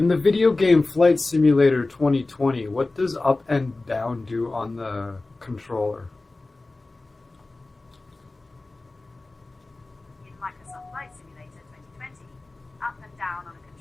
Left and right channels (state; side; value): quieter; right; 3.2 dB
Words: the video game Flight Simulator 2020, what does up and down do on the controller? In Microsoft Flight Simulator 2020, up and down on a